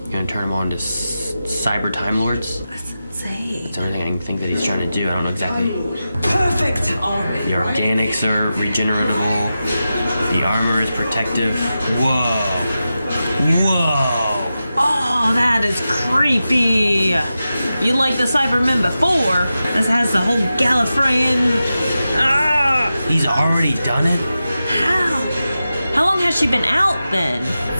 You're gonna turn him on to cyber Time Lords? That's insane. That's the only thing I can think that he's trying to do. I don't know exactly. Perfect army. The organics are regeneratable. The armor is protective. Whoa. Whoa. Oh, that is creepy. You like the Cybermen before. This has the whole Gallifreyan. Ah! He's already done it? How? How long has she been out then?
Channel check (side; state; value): both; inverted; correlation -0.92